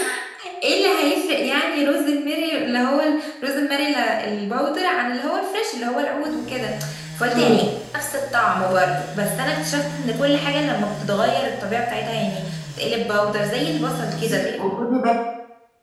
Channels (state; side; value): identical; both; correlation 1.00